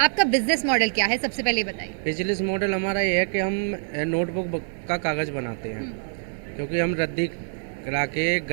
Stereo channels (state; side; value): silent; left; 62 dB below the other